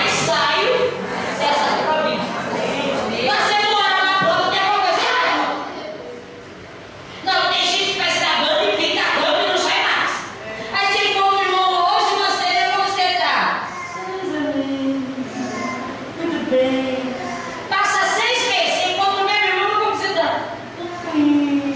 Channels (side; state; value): both; identical; correlation 1.00